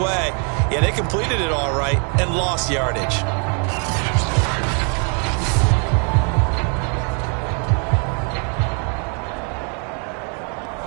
Yeah, they completed it all right and lost yardage.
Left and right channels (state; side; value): quieter; left; 38.4 dB